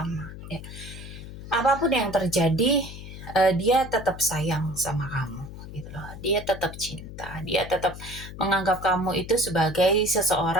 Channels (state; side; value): noise; left; hum, 12 dB below the sound